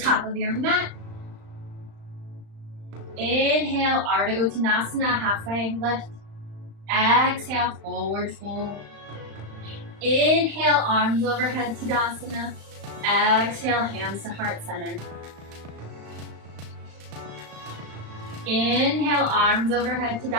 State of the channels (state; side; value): late; left; 35 ms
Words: of your mat. Inhale, Ardha Uttanasana, halfway lift. Exhale, forward fold. Inhale, arms overhead, Tadasana. Exhale, hands to heart center. Inhale, arms overhead,